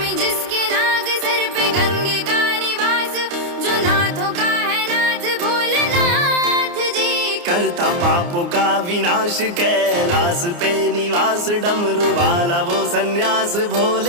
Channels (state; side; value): late; left; 29 ms